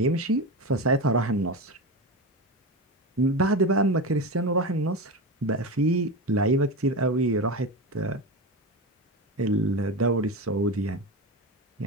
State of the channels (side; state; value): both; normal; correlation 0.21